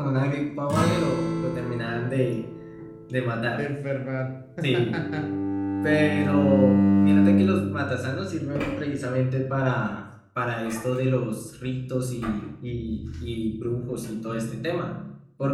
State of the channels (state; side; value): identical; both; correlation 1.00